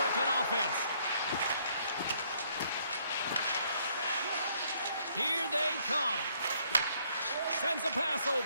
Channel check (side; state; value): both; inverted; correlation -0.67